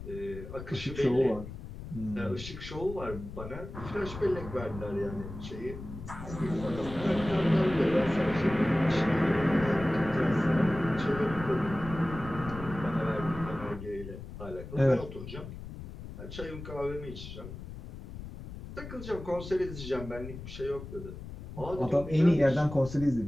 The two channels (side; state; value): left; noise; rumble, 11 dB below the sound